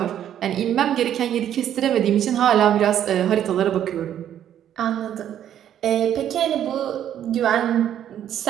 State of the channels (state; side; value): quieter; left; 10.4 dB